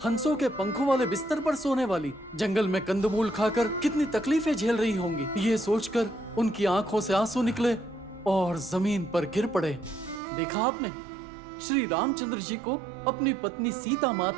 हंसों के पंखों वाले बिस्तर पर सोने वाली, जंगल में कंदमूल खाकर कितनी तकलीफें झेल रही होंगी। ये सोचकर उनकी आंखों से आंसू निकले और जमीन पर गिर पड़े। देखा आपने, श्री रामचंद्र जी को अपनी पत्नी सीता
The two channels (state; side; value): drops out; left; at 10.2 s